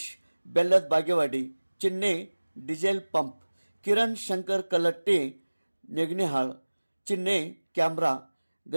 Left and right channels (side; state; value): both; inverted; correlation -1.00